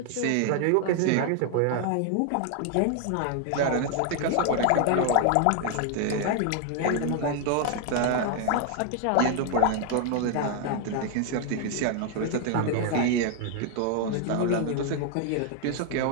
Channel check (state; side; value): different; both; correlation 0.00